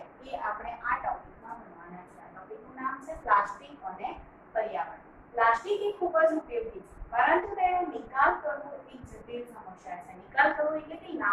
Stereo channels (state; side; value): identical; both; correlation 1.00